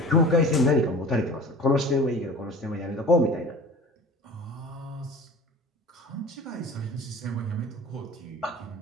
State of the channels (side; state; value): both; normal; correlation 0.40